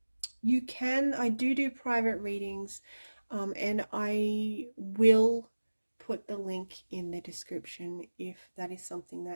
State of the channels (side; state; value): both; inverted; correlation -1.00